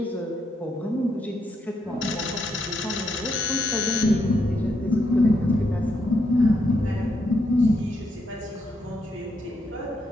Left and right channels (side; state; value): both; normal; correlation 0.79